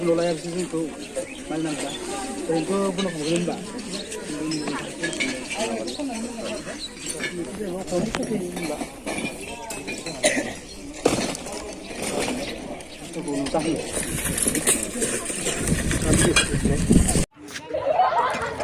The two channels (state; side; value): identical; both; correlation 1.00